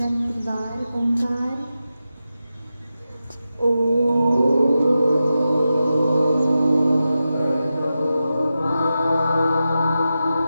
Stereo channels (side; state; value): both; inverted; correlation -0.91